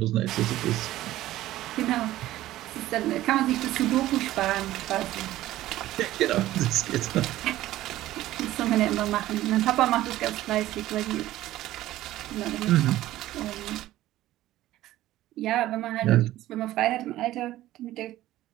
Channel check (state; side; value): quieter; left; 15.1 dB